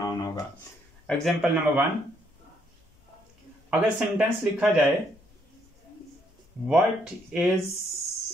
होगा। एग्जाम्पल नंबर 1, अगर सेंटेंस लिखा जाए what is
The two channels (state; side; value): normal; both; correlation 0.72